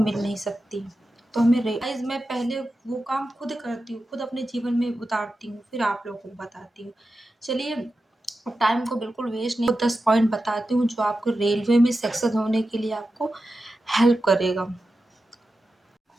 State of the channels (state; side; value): normal; both; correlation 0.91